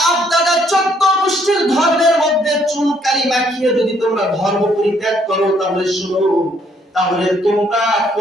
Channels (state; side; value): normal; both; correlation 0.67